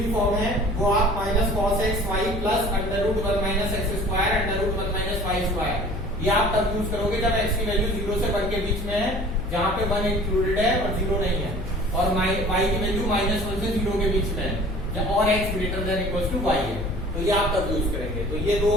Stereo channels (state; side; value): noise; left; hum, 8 dB below the sound